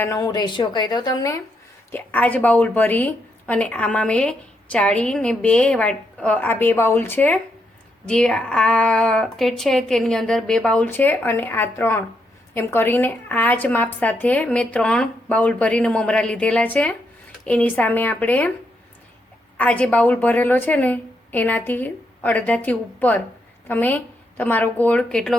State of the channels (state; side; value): normal; both; correlation 0.79